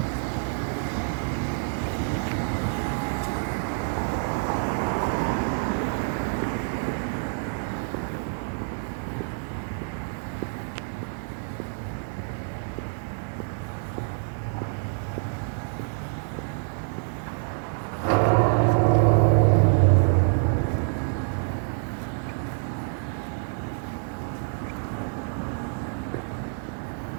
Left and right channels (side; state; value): left; silent; 60 dB below the other